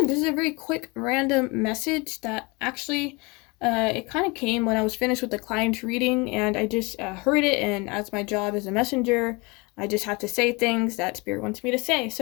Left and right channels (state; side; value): quieter; right; 27.1 dB